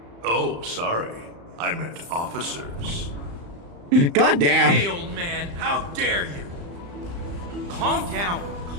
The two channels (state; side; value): late; left; 35 ms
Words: Oh, sorry. I meant officers. Goddamn. Hey, old man, how dare you? Calm down.